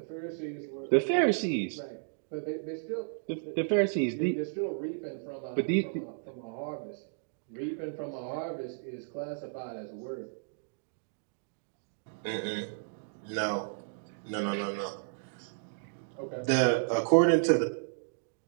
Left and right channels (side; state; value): left; silent; digital silence